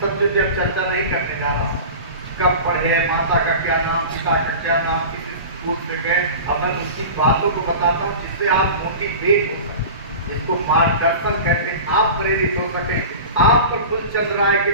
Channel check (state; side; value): inverted; both; correlation -0.34